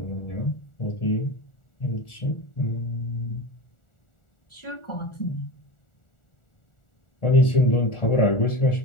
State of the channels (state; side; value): late; right; 1.4 ms